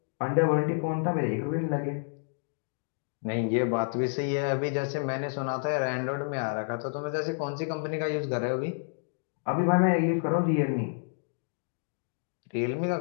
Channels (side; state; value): right; silent; digital silence